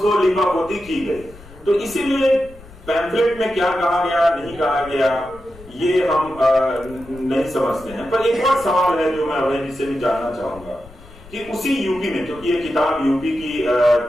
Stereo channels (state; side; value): noise; left; rumble, 20 dB below the sound